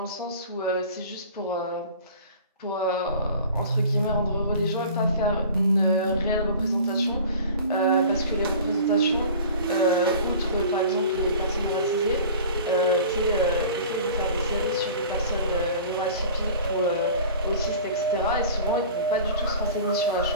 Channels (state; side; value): inverted; both; correlation -0.42